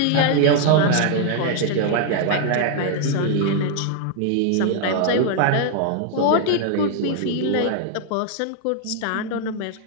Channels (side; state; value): both; different; correlation 0.00